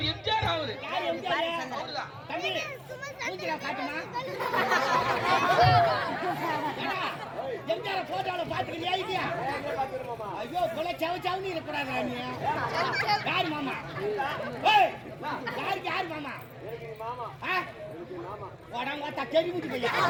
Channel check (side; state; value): both; identical; correlation 1.00